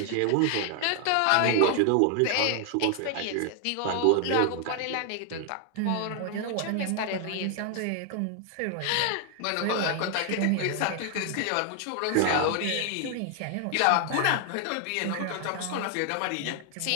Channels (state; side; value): different; both; correlation 0.00